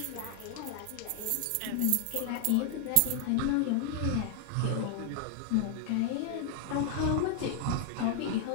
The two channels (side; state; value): both; different; correlation 0.00